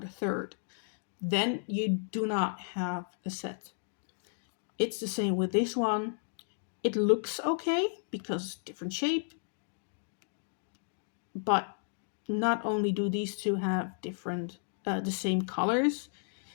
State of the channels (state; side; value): silent; right; digital silence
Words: third. Then you do not have a set. It's the same with this one. It looks okay because different shape, but not only do these two have different, the same colors,